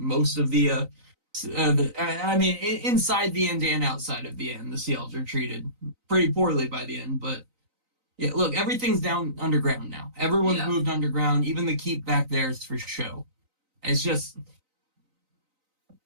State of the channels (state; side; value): late; left; 3.9 ms